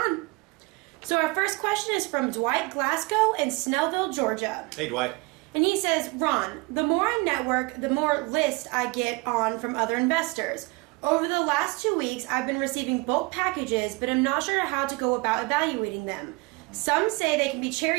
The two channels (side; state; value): left; quieter; 26.4 dB